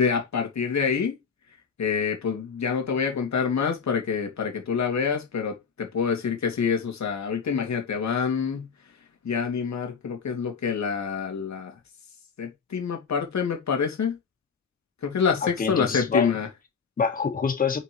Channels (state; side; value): quieter; right; 5.9 dB